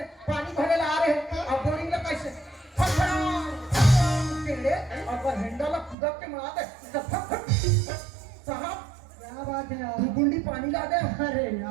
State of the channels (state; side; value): drops out; left; at 6.0 s